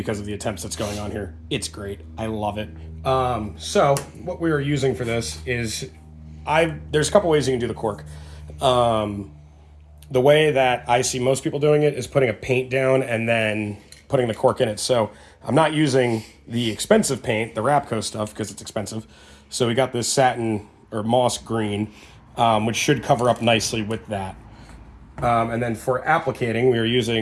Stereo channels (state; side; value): identical; both; correlation 1.00